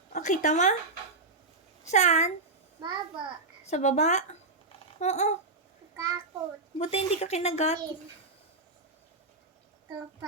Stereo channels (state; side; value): quieter; left; 3.4 dB